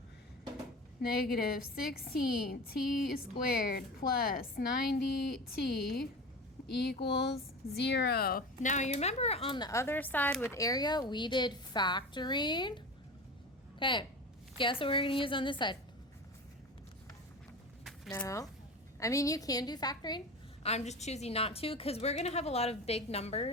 negative 16t squared plus 90t equals 0. Now you remember on the other side with area we did factoring. Okay, guess what we're going to use on this side? No. I mean, you can do factoring. I'm just choosing not to because we're going to have a lot of big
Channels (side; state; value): both; normal; correlation 0.30